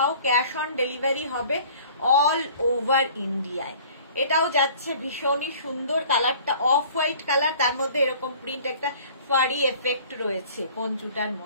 ক্যাশ অন ডেলিভারি হবে অল ওভার ইন্ডিয়ায়। এটাও যাচ্ছে ভীষণই সুন্দর, কালারটা অফ হোয়াইট কালার, তার মধ্যে এরকম প্রিন্ট, একটা ফারি এফেক্ট রয়েছে পঞ্চুটার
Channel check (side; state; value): both; inverted; correlation -0.49